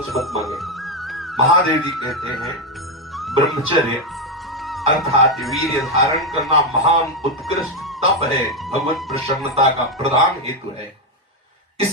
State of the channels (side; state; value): both; normal; correlation 0.06